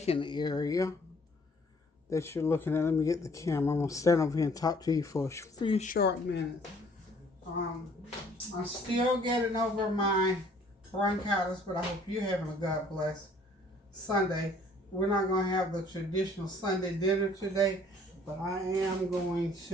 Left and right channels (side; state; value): both; normal; correlation 0.58